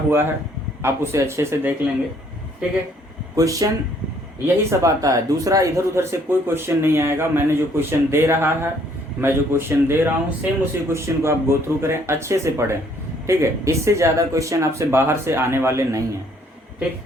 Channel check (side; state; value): both; normal; correlation 0.63